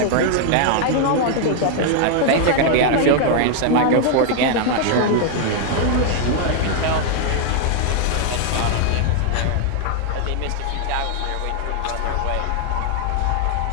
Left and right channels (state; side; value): different; both; correlation 0.00